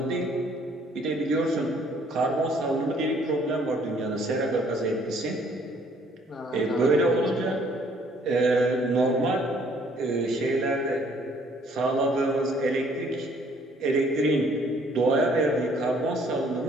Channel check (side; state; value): both; normal; correlation 0.61